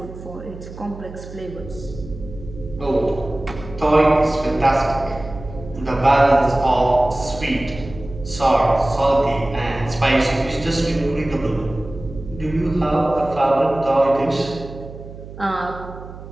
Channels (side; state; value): right; noise; hum, 14 dB below the sound